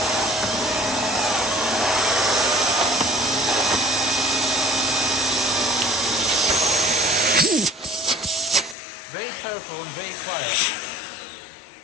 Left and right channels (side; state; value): right; drops out; at 8.8 s